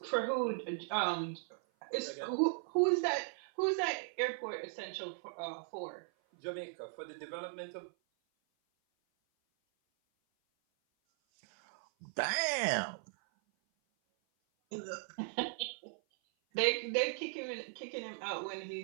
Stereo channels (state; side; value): silent; left; 53 dB below the other